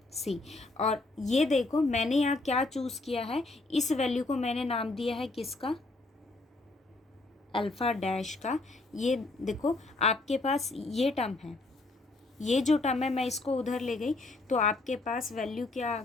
सी, और ये देखो मैंने यहाँ क्या चूज़ किया है, इस वैल्यू को मैंने नाम दिया है किसका, अल्फ़ा डैश का। ये देखो आपके पास ये टर्म है, ये जो टर्म है मैं इसको उधर ले गई, तो आपके पास वैल्यू क्या आ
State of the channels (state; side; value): quieter; right; 3.2 dB